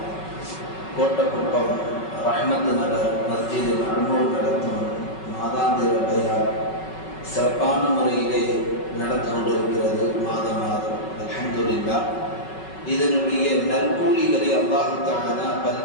கோட்டக்குப்பம் ரஹ்மத் நகர் மஸ்ஜிதில் அனுமதி நடத்தும் மாதாந்திர பயான் சிறப்பான முறையிலே நடந்து கொண்டிருக்கிறது. மாதம் அல்ஹம்துலில்லாஹ். இதனுடைய நற்கூலிகளை அல்லாஹ் தஆலா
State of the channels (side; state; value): right; late; 5.3 ms